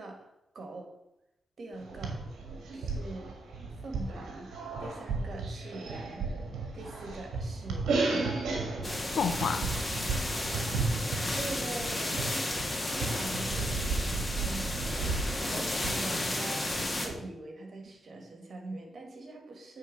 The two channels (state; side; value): normal; both; correlation 0.78